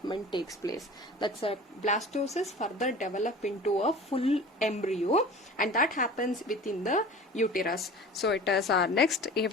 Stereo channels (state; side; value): normal; both; correlation 0.40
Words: takes place. That's a blastocyst further develop into a full embryo, and that happens within the uterus. So it is our next